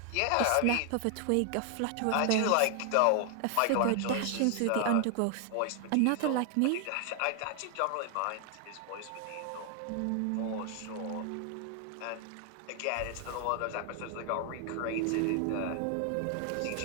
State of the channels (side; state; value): both; different; correlation 0.00